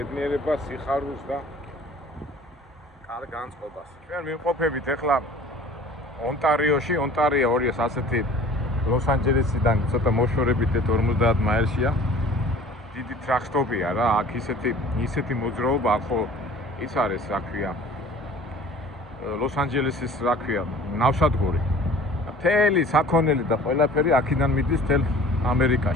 სიხარულს და კარგ განწყობას. ჩვენ ვიმყოფებით ახლა ონტარიოში, ონტარიო 200 ასეთი ლოს-ანჯელესიდან ცოტა მოშორებით 50 მაილშია. დიდი ტრაქსტოპია რა, აქ ისეთი მოძრაობა, ახო ის არის, რა ქვია. ლოს-ანჯელესის რა ქვია, ნავსადგური. მთელი საქონელი და ყველაფერი აქედან მიდის თელ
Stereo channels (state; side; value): normal; both; correlation 0.47